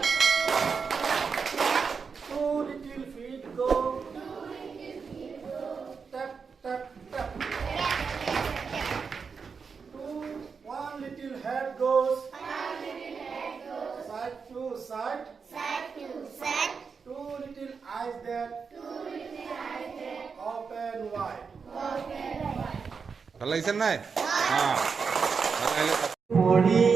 ভাল লাগিছে নাই?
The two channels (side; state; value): left; quieter; 5.6 dB